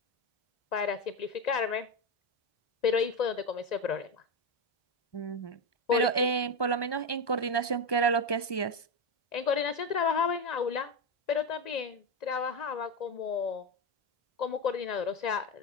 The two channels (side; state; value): right; late; 1.2 ms